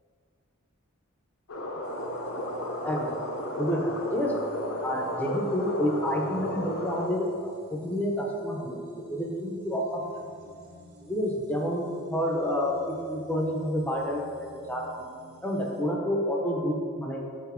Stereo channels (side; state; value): both; normal; correlation 0.40